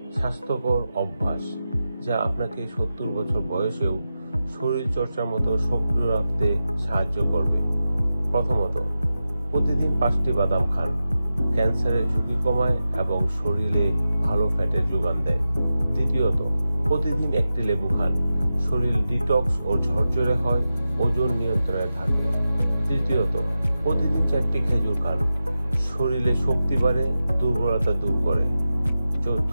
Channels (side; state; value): both; inverted; correlation -0.92